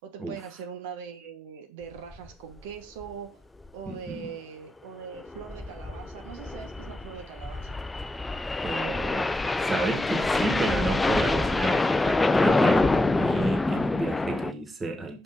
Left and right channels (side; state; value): both; normal; correlation 0.88